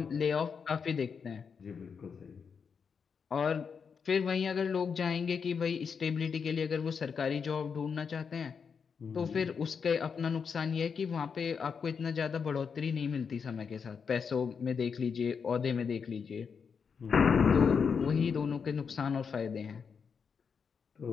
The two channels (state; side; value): quieter; right; 6.1 dB